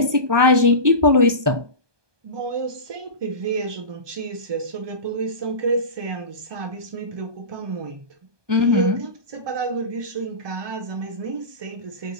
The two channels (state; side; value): late; left; 1.2 ms